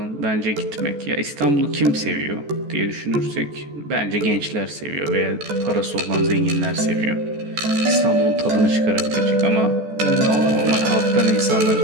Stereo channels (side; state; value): left; late; 14 ms